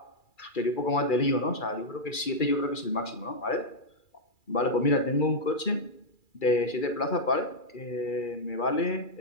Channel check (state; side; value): late; right; 2.3 ms